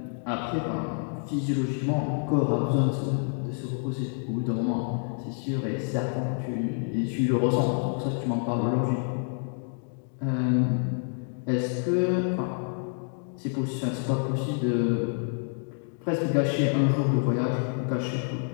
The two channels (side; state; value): right; silent; 59 dB below the other